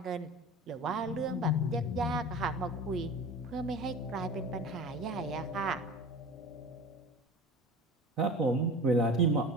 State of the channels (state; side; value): normal; both; correlation 0.36